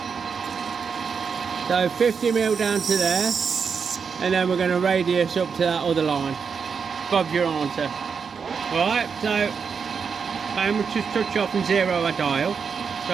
So 50 mil down to there, and then we're going to radius up to that other line. Bob's your answer. Right, so we'll just touch off and zero a dial.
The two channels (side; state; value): left; quieter; 6.0 dB